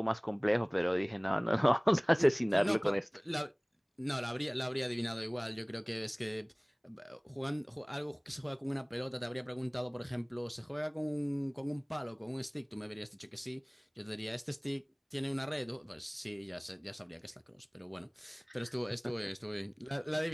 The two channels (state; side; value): identical; both; correlation 1.00